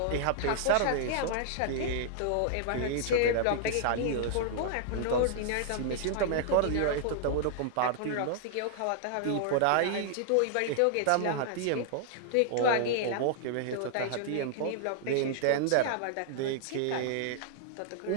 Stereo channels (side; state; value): both; different; correlation -0.01